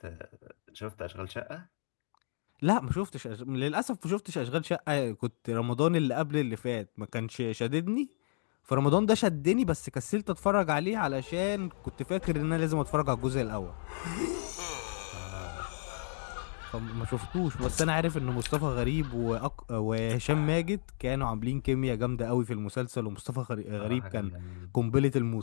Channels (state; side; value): silent; right; digital silence